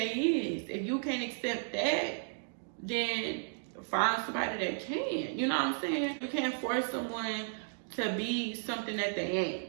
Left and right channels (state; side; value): silent; left; digital silence